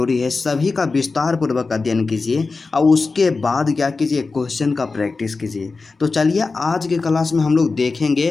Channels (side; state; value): right; quieter; 4.1 dB